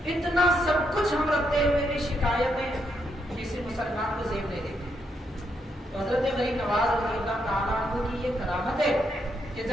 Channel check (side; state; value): both; normal; correlation 0.78